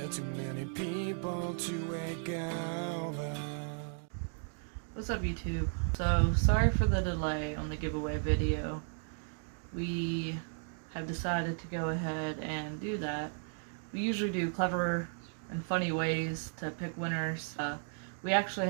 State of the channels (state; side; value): silent; left; 55 dB below the other